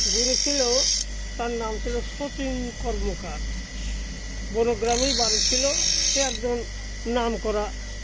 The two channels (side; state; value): both; identical; correlation 1.00